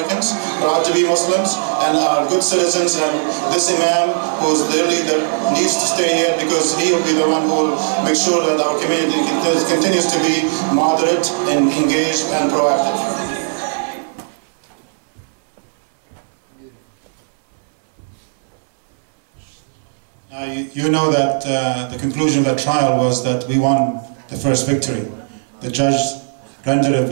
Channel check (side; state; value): left; silent; 64 dB below the other